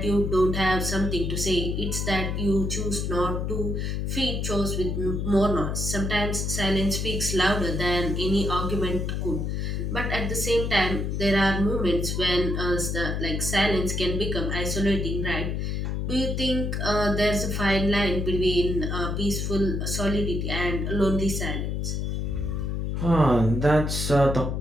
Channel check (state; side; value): noise; left; hum, 1 dB below the sound